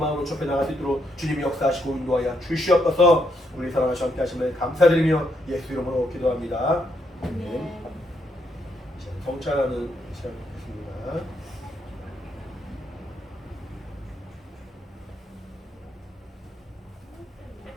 접해 나갈 수 있도록 주님이 역사하시고 인도하여 주시옵소서. 우리 사랑하시고 함께 하심을 감사드리며 예수 이름으로 기도합니다. 아멘. 성찬하는 시간 갖겠습니다.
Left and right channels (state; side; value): normal; both; correlation 0.77